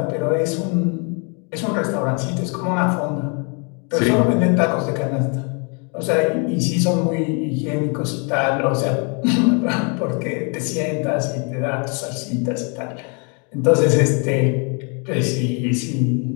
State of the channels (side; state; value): right; quieter; 35.8 dB